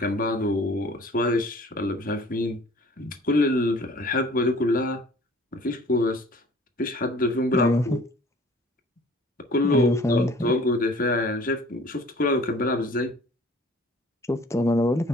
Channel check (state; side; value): normal; both; correlation 0.50